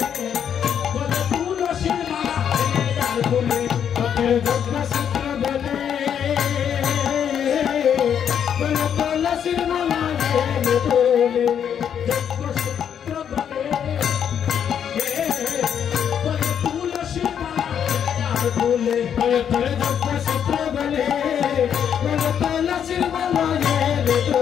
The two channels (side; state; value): right; quieter; 8.5 dB